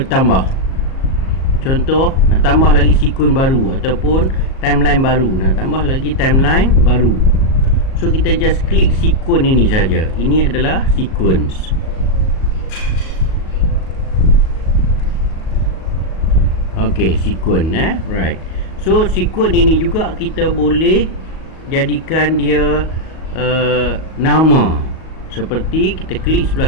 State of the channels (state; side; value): late; right; 37 ms